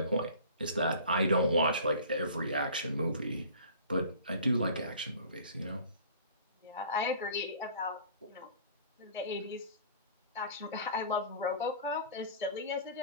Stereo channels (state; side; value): inverted; both; correlation -0.45